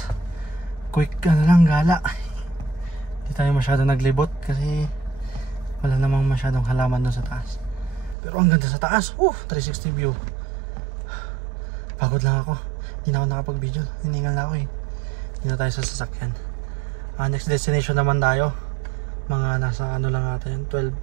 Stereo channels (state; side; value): drops out; left; at 8.2 s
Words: Quick lang gala. Hindi tayo masyado naglibot kasi wala namang masyadong halaman doon sa taas. Pero ang ganda sa taas. 360 view. Pagod lang ako. Hindi na ako nakapag-video. Hiningal na ako eh. Hindi na tayo sa sasakyan. Next destination naman tayo. Mga nasa ano lang natin, 12